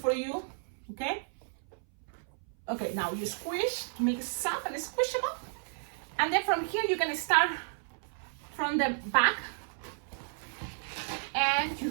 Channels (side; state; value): left; silent; 56 dB below the other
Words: you, okay? Okay, now you squish to make it soft and squishable. And then from here, you're gonna start from the back. And